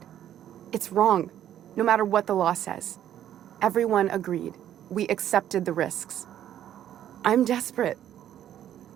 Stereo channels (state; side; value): quieter; left; 11.0 dB